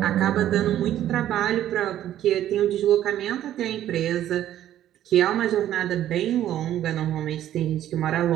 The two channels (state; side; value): quieter; left; 12.0 dB